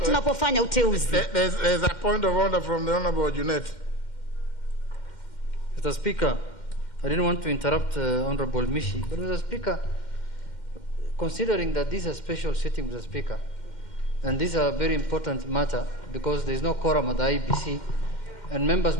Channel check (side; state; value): right; late; 2.1 ms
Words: tunapofanya uteuzi. There's a point of order from the Honorable Junet. Mr. Speaker, I didn't want to interrupt Honorable Mishi, but Mr. Speaker, considering that this is a special sitting, Mr. Speaker, and this is a very important matter because there is no quorum at the IBC, and members,